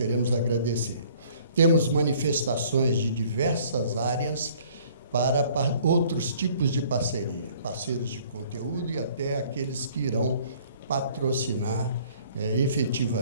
agradecer. Temos manifestações de diversas áreas para outros tipos de parceria, parceiros de conteúdo e até aqueles que irão patrocinar,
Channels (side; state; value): both; inverted; correlation -0.57